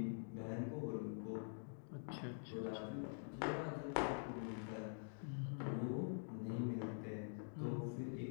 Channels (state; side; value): silent; right; digital silence